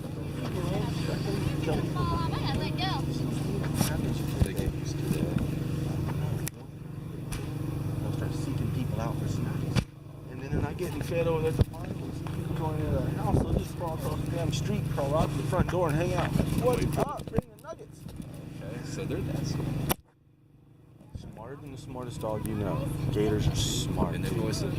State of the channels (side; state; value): both; identical; correlation 1.00